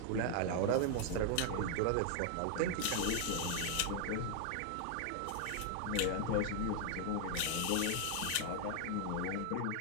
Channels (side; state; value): both; different; correlation 0.00